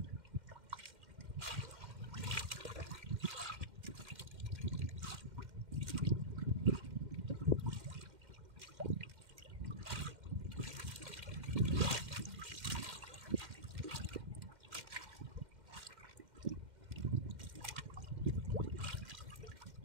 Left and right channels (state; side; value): late; left; 2.1 ms